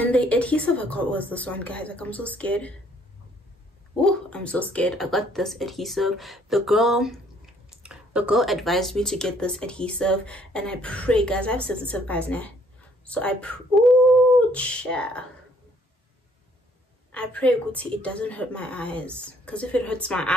the adhesive I got was this one, guys. Like, I'm so scared. Oh, I'm so scared. I got this adhesive. The girl advised me to get this adhesive, and I pray, guys, I have sensitive eyes now, so I pray, Gucci, it doesn't hurt my eyes, because if it hurts my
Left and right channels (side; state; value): both; normal; correlation 0.64